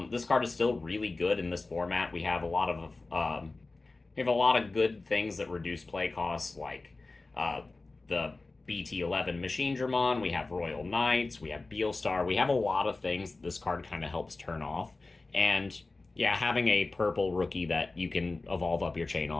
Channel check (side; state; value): right; quieter; 3.4 dB